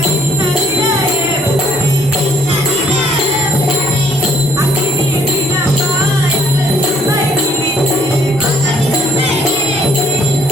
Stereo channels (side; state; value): both; normal; correlation 0.63